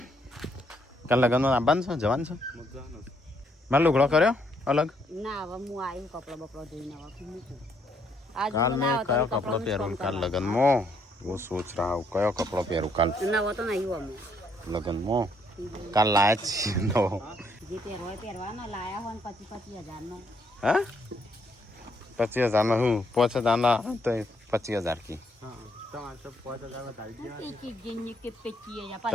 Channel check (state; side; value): normal; both; correlation 0.71